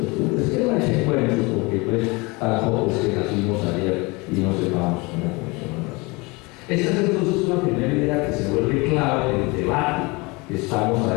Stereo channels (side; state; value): right; quieter; 26.0 dB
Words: Que no echen cuentos, porque pues tampoco es que nacimos ayer y no sepamos cómo funcionan las cosas. Esta es entonces una primera idea que se vuelve clave en el debate que estamos